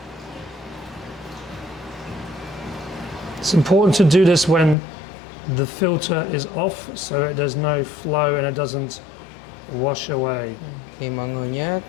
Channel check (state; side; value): drops out; right; at 4.8 s